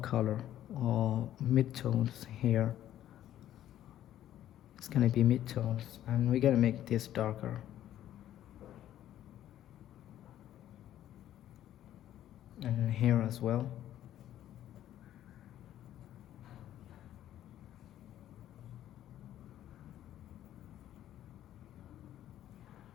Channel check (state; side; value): quieter; right; 12.1 dB